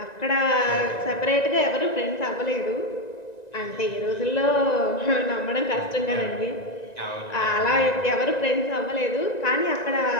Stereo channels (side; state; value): right; late; 1.9 ms